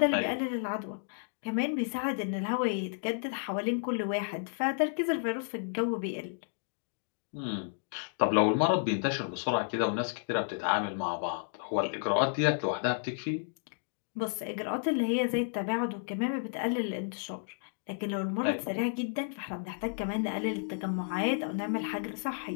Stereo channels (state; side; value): silent; right; digital silence